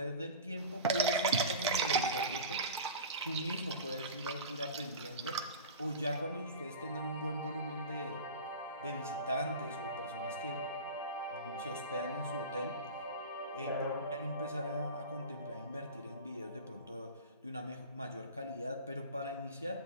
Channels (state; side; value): inverted; both; correlation -0.31